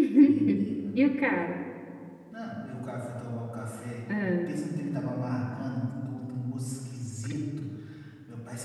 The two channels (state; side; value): identical; both; correlation 1.00